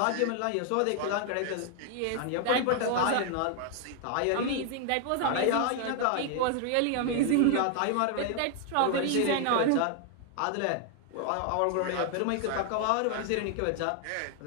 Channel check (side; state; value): both; different; correlation 0.00